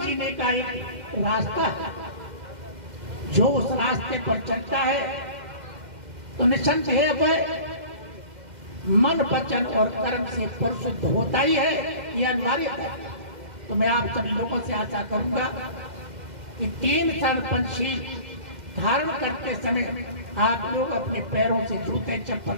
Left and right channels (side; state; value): left; late; 2.1 ms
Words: का एक रास्ता है। जो उस रास्ते पर चलता है तो निसंदेह वह मन वचन और कर्म से परिशुद्ध होता ही है, यह अनिवार्य है। तो मैं आप सभी लोगों से आशा करूंगा कि 3 शरण पंचशील धारण करते समय आप लोग अपने पैरों से जूते चप्पल